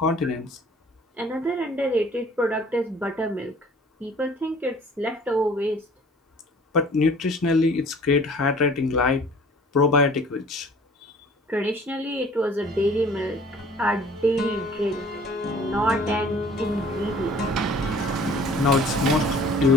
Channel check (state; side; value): normal; both; correlation 0.51